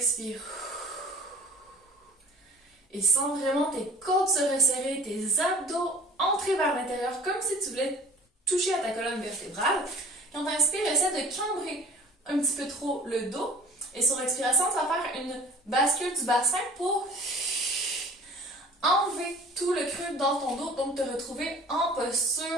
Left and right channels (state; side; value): normal; both; correlation 0.46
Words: Et sens vraiment tes côtes se resserrer, tes abdos entrer vers l'intérieur comme si tu voulais toucher à ta colonne vertébrale. Quand tu inspires, essaie de cambrer un petit peu trop le dos. Et sur expiration, tu vas faire une bascule du bassin pour enlever tout le creux dans ton dos, donc te retrouver en